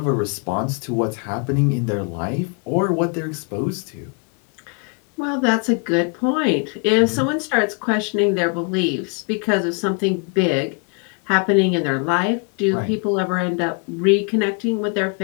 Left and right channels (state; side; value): quieter; right; 36.1 dB